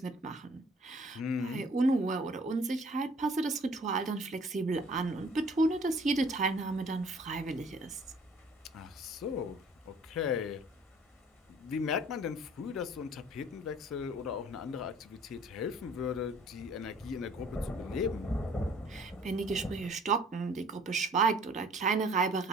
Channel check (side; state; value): both; normal; correlation 0.54